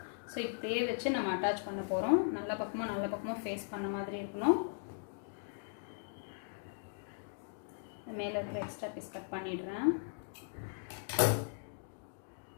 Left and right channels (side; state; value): right; silent; digital silence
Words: ஸோ இப்படியே வச்சு நம்ம அட்டாச் பண்ண போகிறோம். நல்ல பக்கமும் ஃபேஸ் பண்ண மாதிரி இருக்கணும். மேலே இருக்கிற எக்ஸ்ட்ரா பீஸ் கட் பண்ணிடுறேன்.